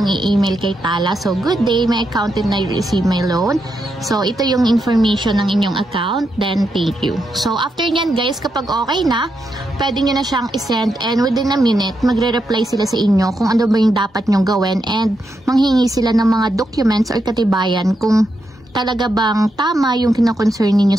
i-email kay Tala. So, good day, my account did not receive my loan. So, ito yung information ng inyong account. Then, thank you. So, after nyan guys, kapag okay na, pwede nyo na siyang isend, and within a minute, magre-reply sila sa inyo kung ano ba yung dapat nyong gawin, and manghingi sila ng mga documents or katibayan kung talaga bang tama yung kina-concern ninyo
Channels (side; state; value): both; normal; correlation 0.83